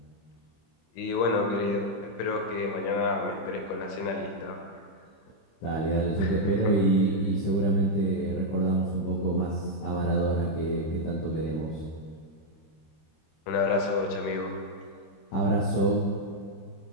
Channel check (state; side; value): late; right; 25 ms